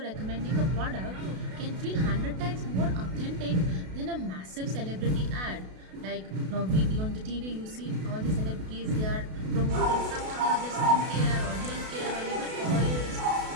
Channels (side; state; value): left; late; 32 ms